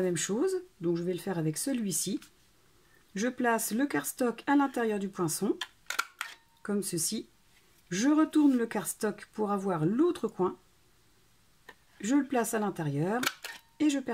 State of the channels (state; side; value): identical; both; correlation 1.00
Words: même chose. Donc je vais le faire avec celui-ci. Je place le cardstock à l'intérieur du poinçon. Comme ceci. Je retourne le cardstock pour avoir l'autre coin. Je le place à l'intérieur et je